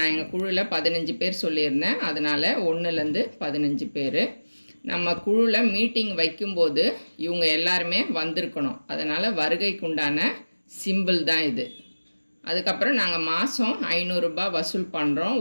எங்கள் குழுவில் 15 பேர் சொல்லியிருந்தேன், அதனால் 1லேருந்து 15 பேர். நம்ம குழுவில் மீட்டிங் வைக்கும்போது இவங்க எல்லாருமே வந்திருக்கணும். அதனால் வருகைக்குண்டான சிம்பிள் தான் இது. அதுக்கப்புறம் நாங்கள் மாதம் 500 ரூபாய் வசூல் பண்ணுறோம்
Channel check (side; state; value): both; inverted; correlation -1.00